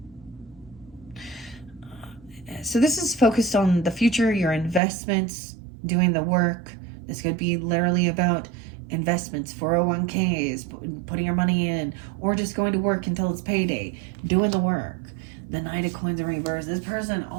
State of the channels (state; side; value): drops out; left; at 4.8 s